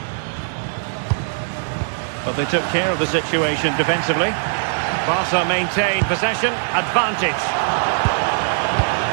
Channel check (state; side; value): silent; left; 65 dB below the other